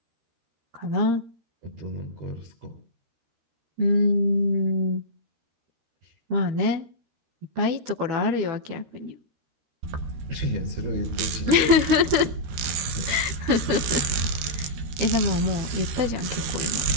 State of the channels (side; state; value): left; late; 13 ms